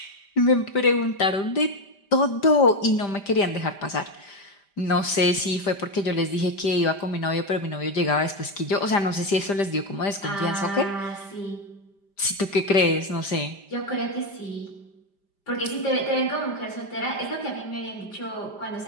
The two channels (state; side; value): late; right; 5.0 ms